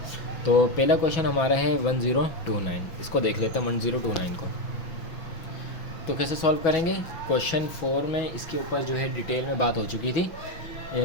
तो पहला क्वेश्चन हमारा है 1029। इसको देख लेते हैं 1029 को। तो कैसे सॉल्व करेंगे? क्वेश्चन 4 में इसके ऊपर जो है डिटेल में बात हो चुकी थी,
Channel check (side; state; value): right; late; 5.9 ms